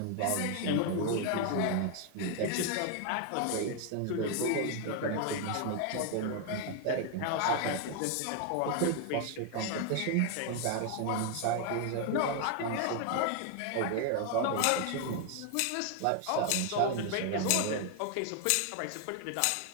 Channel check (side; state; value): both; different; correlation 0.00